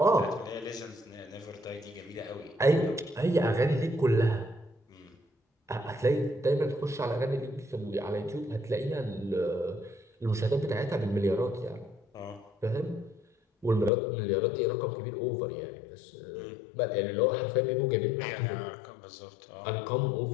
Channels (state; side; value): drops out; right; at 13.9 s